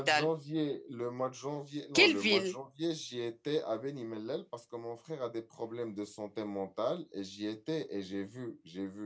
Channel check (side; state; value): both; identical; correlation 1.00